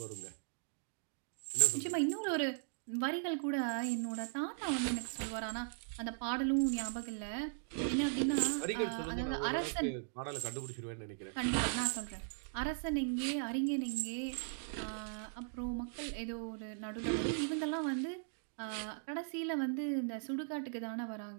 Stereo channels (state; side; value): silent; left; digital silence